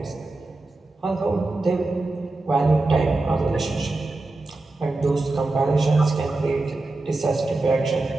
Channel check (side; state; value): left; quieter; 3.1 dB